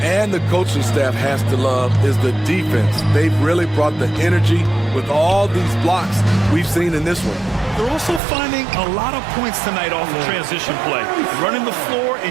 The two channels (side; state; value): left; drops out; at 8.2 s